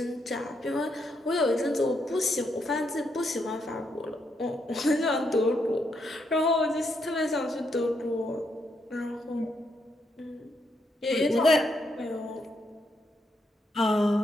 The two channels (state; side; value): normal; both; correlation 0.78